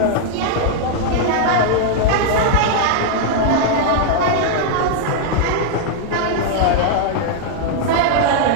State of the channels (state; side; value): different; both; correlation 0.00